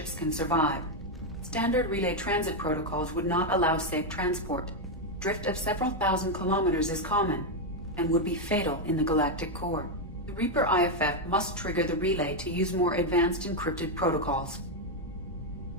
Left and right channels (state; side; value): normal; both; correlation 0.03